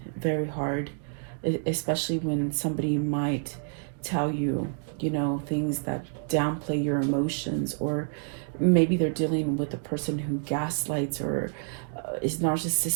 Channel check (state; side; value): silent; left; digital silence